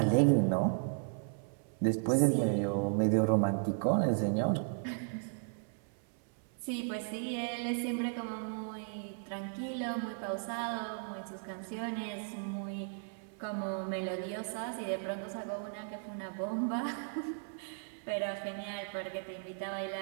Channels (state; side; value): silent; left; 54 dB below the other